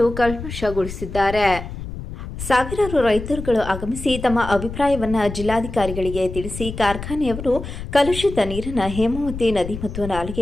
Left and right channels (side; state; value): left; noise; rumble, 9 dB below the sound